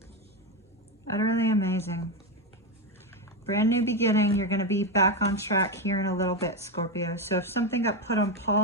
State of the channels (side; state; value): both; normal; correlation 0.11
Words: Utterly amazing. Brand new beginning. You're going to be back on track here in a little bit, Scorpio. So if something got put on